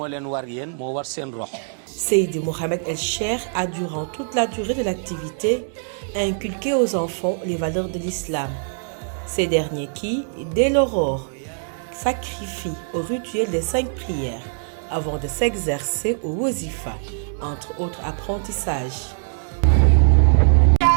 leen war yéen moo war seen rox. Seydi Mohamed El Cheikh a durant toute la durée de l'activité inculqué aux enfants les valeurs de l'islam. Ces derniers qui, dès l'aurore, sacrifient au rituel des 5 prières avant de s'exercer au wazifa, entre autres apprentissages.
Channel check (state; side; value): silent; left; 64 dB below the other